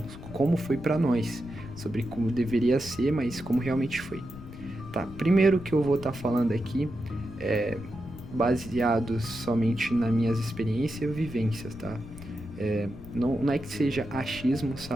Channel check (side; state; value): left; noise; rumble, 14 dB below the sound